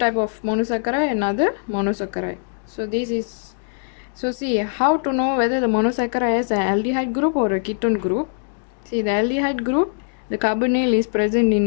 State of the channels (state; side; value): silent; right; digital silence